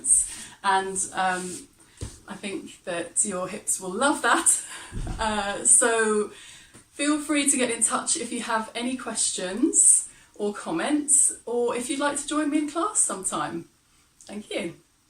And I think that your hips will love that. So feel free to get in touch if you have any questions or comments, or if you'd like to join me in class sometime. Thank you.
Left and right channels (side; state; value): both; identical; correlation 1.00